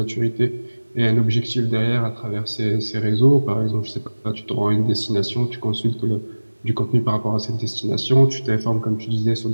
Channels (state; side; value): inverted; both; correlation -1.00